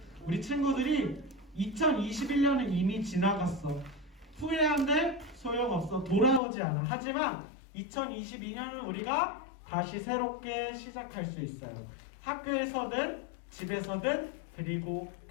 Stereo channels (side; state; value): right; drops out; at 6.4 s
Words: 우리 친구들이 2021년은 이미 지나갔어. 후회한데 소용없어. 돌아오지 않아. 하지만 2022년은 우리가 다시 새롭게 시작할 수 있어요. 학교에서든 집에서든 그리고